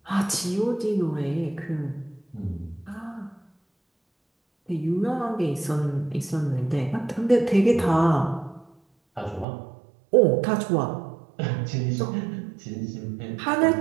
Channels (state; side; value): drops out; left; at 9.5 s